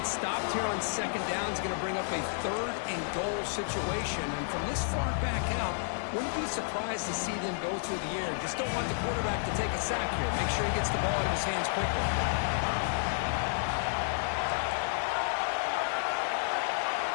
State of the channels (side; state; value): right; silent; digital silence